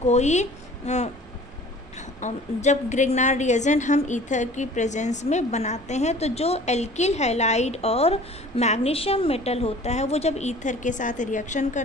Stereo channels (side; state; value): both; normal; correlation 0.47